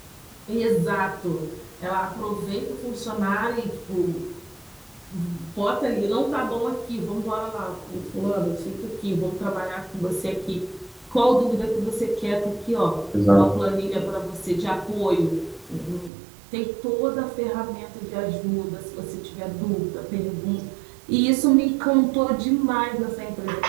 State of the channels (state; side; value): drops out; left; at 16.1 s